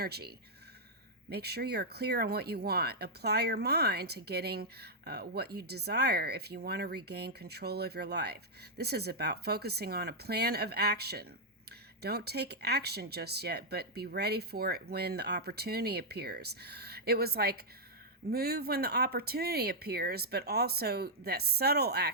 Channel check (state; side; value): normal; both; correlation -0.05